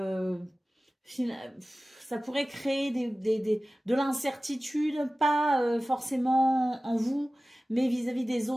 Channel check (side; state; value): both; normal; correlation 0.97